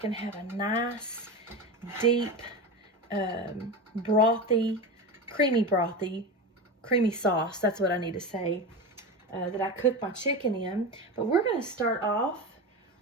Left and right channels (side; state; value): both; normal; correlation 0.23